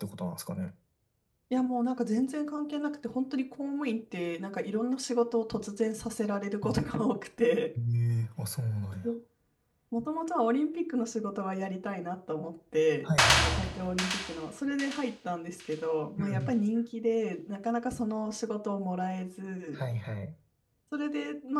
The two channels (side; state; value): both; identical; correlation 1.00